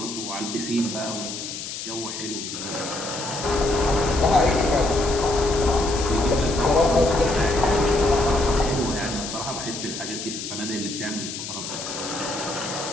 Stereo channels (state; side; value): noise; left; hiss, 7 dB below the sound